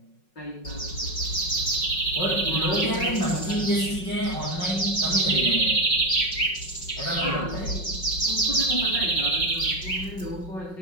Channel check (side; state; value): right; late; 5.4 ms